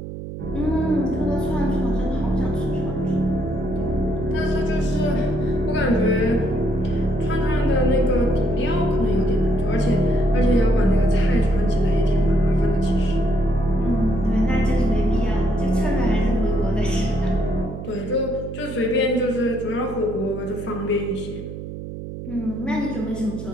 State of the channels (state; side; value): noise; right; hum, 9 dB below the sound